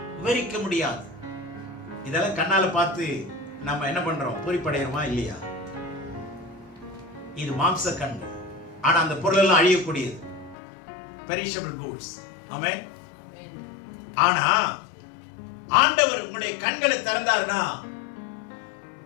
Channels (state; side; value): drops out; right; at 10.6 s